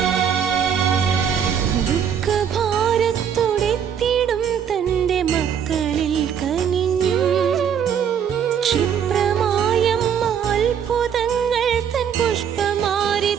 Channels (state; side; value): quieter; left; 8.1 dB